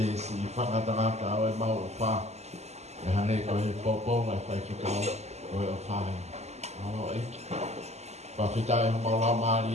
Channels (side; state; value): left; late; 0.32 ms